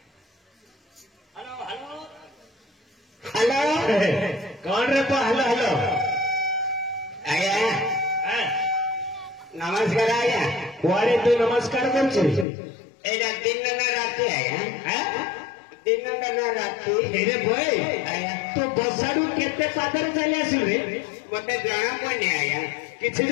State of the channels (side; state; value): right; drops out; at 12.5 s